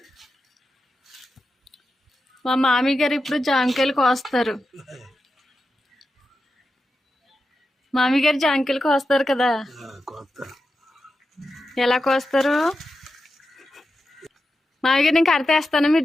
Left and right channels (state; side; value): normal; both; correlation 0.90